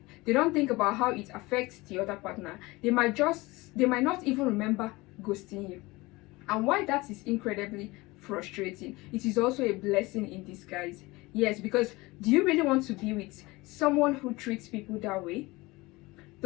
They don't think about how it affects the other partner. They might not even remember ghosting you. And why that is incredibly frustrating, it is also a blessing in disguise. Yes, because do you really want to be with someone who treats people that way.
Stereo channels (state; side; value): quieter; right; 21.9 dB